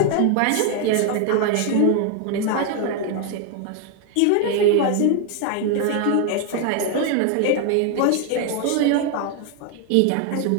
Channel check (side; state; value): both; different; correlation 0.01